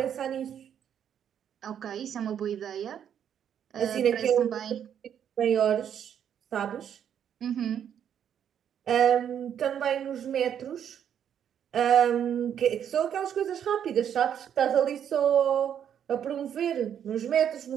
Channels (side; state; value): left; quieter; 9.0 dB